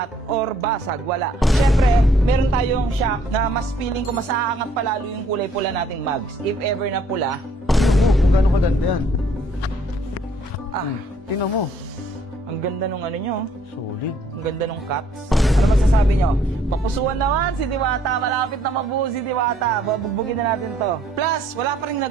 or basag, wala. Siyempre, meron tayong shock na mas feeling ko mas aangat palalo yung kulay pula nating mags. If ever na pula. Kung gano'ng kaganda yan. Tingnan mo. Ang ganda nung ano nyo. Solid. Ang ganda nung cuts. Ano magsasabi nyo? Papusuan naman si Diwata. Malapit na mabuo si Diwata. Babugbugin na natin to. Plus, wala pa rin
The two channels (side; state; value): both; normal; correlation 0.63